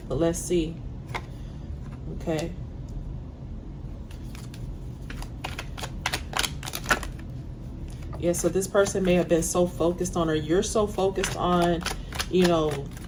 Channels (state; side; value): identical; both; correlation 1.00